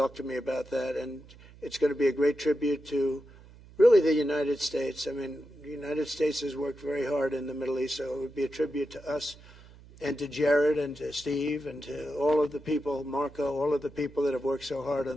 to me about that, and it's going to be a great tribute to really the United States. I mean, the United States has worked very hard in the Middle East, so it would be a tribute to us and to Jared and to Steve and to all of the people, Marco, all of the people that have worked so hard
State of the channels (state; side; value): noise; right; hum, 21 dB below the sound